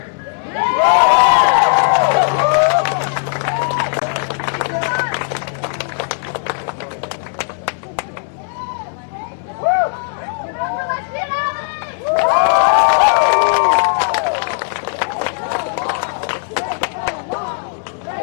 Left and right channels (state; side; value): silent; right; digital silence